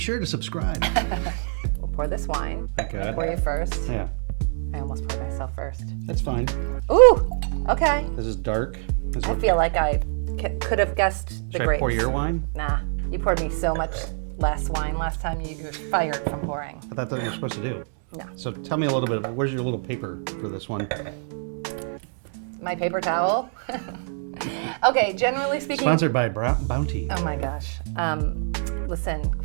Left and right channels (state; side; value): silent; left; digital silence